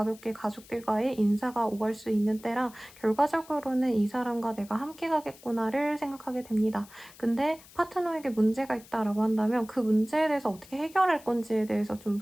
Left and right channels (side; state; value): left; noise; hiss, 22 dB below the sound